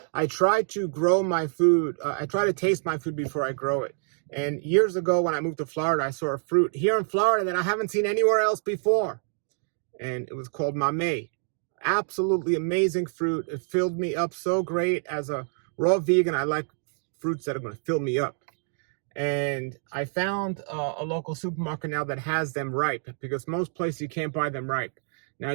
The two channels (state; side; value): silent; left; 60 dB below the other